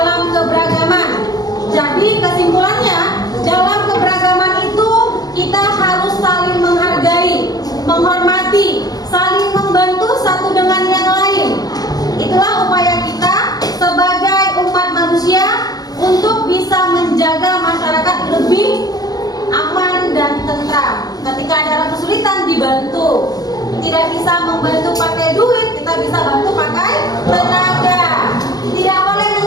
keberagaman. Jadi kesimpulannya, dalam keberagaman itu kita harus saling menghargai, menghormati, saling membantu satu dengan yang lain. Itulah upaya kita sebagai umat manusia untuk bisa menjaga masyarakat lebih aman dan tentram. Ketika ada kesulitan dibantu. Tidak bisa membantu pakai duit, kita bisa bantu pakai tenaga. Tidak boleh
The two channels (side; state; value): right; late; 0.19 ms